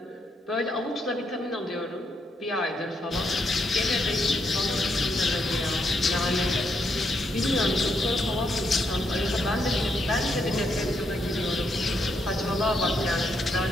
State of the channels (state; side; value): normal; both; correlation 0.78